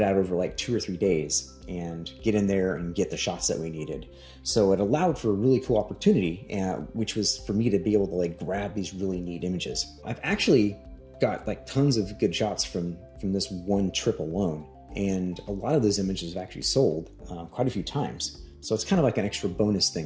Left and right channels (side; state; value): both; identical; correlation 1.00